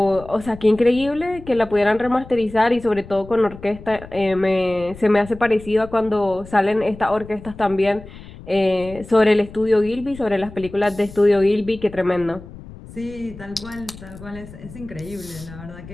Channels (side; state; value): left; noise; rumble, 17 dB below the sound